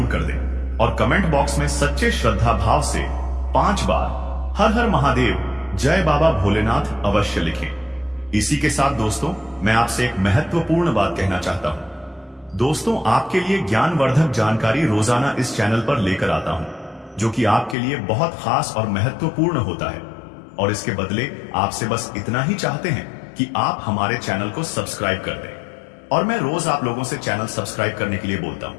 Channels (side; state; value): right; drops out; at 17.8 s